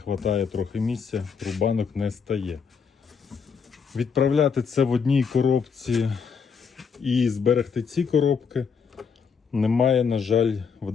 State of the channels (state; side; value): quieter; right; 6.1 dB